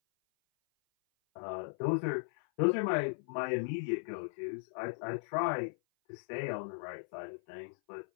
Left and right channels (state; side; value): silent; right; 53 dB below the other